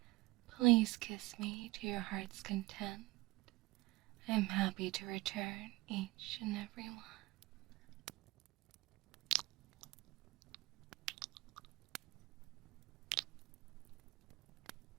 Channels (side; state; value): left; quieter; 21.1 dB